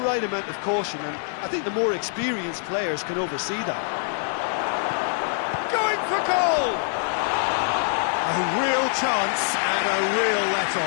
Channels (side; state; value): right; silent; digital silence